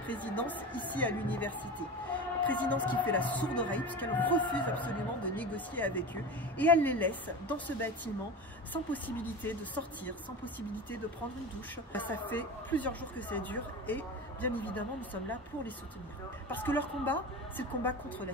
ici à l'université. Présidence qui fait la sourde oreille puisqu'elle refuse absolument de négocier avec eux et elle les laisse dans ce bâtiment sans possibilité de sortir, sans possibilité de prendre une douche. Ça fait plusieurs jours que ça dure et bien évidemment nous sommes là pour les soutenir. Parce que leur combat, c'est le combat contre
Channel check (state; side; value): normal; both; correlation 0.28